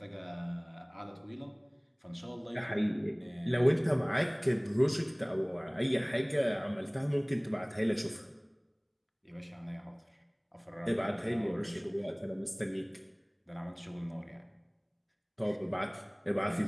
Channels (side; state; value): both; identical; correlation 1.00